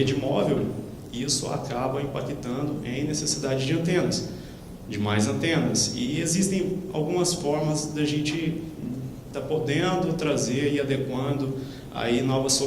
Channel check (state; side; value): identical; both; correlation 1.00